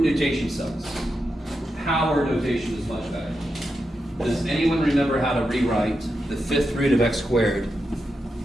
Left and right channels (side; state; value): both; normal; correlation 0.87